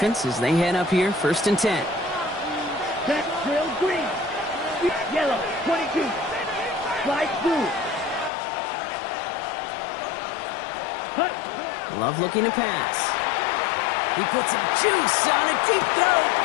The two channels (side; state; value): right; drops out; at 8.3 s